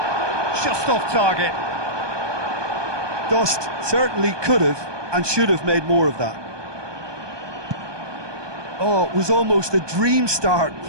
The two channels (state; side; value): late; left; 1.2 ms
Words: Just off target. Dost certainly could have and should have made more of that. Oh, it was almost a dream start.